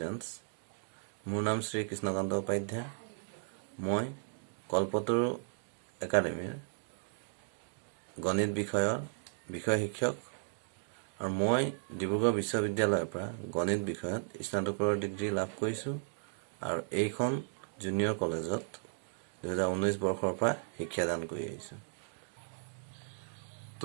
মোৰ নাম শ্ৰী কৃষ্ণকান্ত উপাধ্যায়। মই কল্পতৰু একাডেমীৰ গণিত বিষয় শিক্ষক আৰু মই ডিব্ৰুগড় বিশ্ববিদ্যালয়ৰ পৰা গণিত বিষয়ত স্নাতকৰ ডিগ্ৰী লাভ কৰিছোঁ আৰু এইখন জুনিয়ৰ কলেজত 2019 বৰ্ষৰ পৰা শিক্ষাদান কৰি আহিছোঁ।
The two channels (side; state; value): left; silent; digital silence